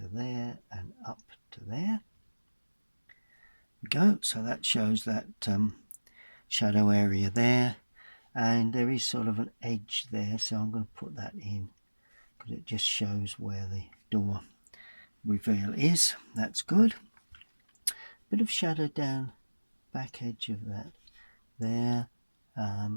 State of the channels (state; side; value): inverted; both; correlation -1.00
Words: there and up to there. Go, so that shows that shadow area there, and there is sort of an edge there, so I'm going to put that in because it just shows where the door reveal is. That's good. Bit of shadow down back edge of that there,